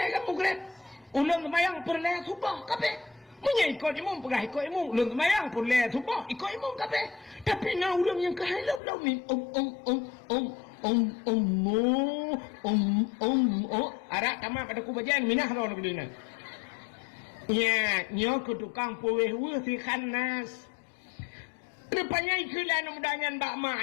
kan mugrib ulun semayang purle subah kabeh munya ikut imam pegah ikut imam ulun semayang purle subah ikut imam kabeh tapi na ulun yang kahilap ni arak tamak pada kubajian minah lawan begini ya nyo ke tukang puweh si khanas rupanya ikulah mudahan bak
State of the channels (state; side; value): drops out; right; at 8.8 s